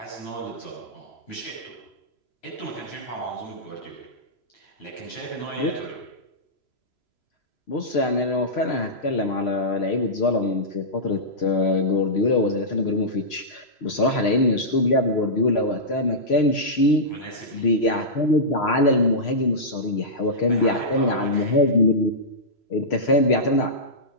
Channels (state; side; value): late; right; 3.0 ms